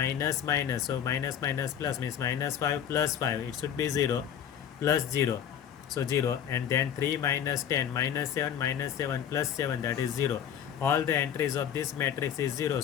minus, so minus minus plus means minus 5 plus 5, it should be 0 plus 0, so 0. And then 3 minus 10 minus 7 minus 7 plus 7, that is 0. All the entries of this matrix is 0,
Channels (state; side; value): quieter; right; 9.2 dB